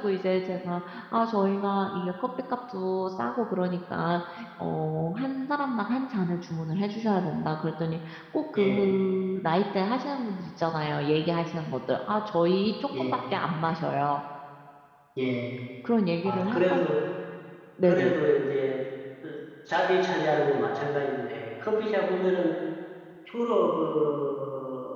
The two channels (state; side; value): identical; both; correlation 1.00